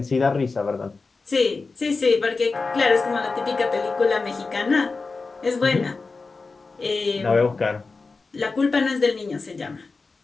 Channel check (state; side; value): quieter; right; 4.1 dB